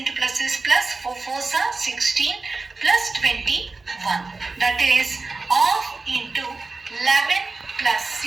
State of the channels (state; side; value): quieter; left; 3.7 dB